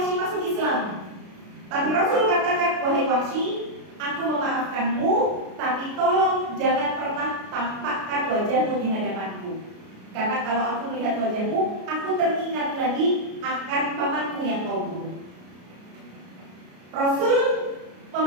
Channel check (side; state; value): left; late; 33 ms